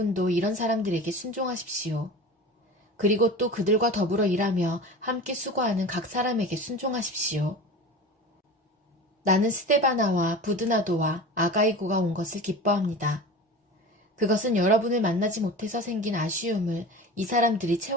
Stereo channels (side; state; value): both; normal; correlation 0.33